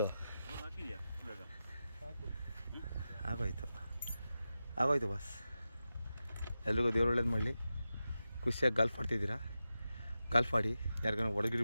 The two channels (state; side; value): inverted; both; correlation -0.92